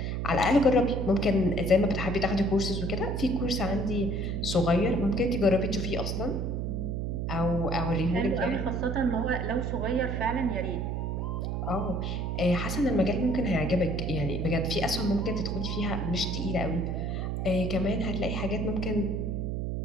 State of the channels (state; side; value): noise; right; hum, 1 dB below the sound